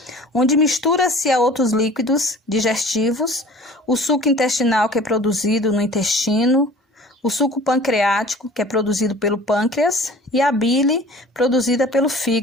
onde mistura-se a outros líquidos digestivos, o suco intestinal, que é produzido no intestino, o suco pancreático, que é produzido pelo pâncreas, e a bile, produzida pelo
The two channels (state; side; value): normal; both; correlation 0.45